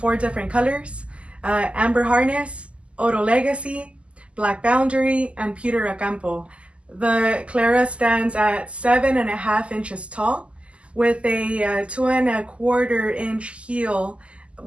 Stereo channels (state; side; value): late; left; 0.056 ms